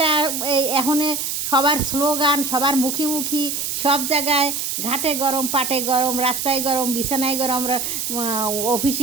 এই এখন সবার স্লোগান, সবার মুখী মুখী, সব জায়গায় ঘাটে গরম, পাটে গরম, রাস্তায় গরম, বিছানায় গরম,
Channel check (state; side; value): noise; right; hiss, 2 dB below the sound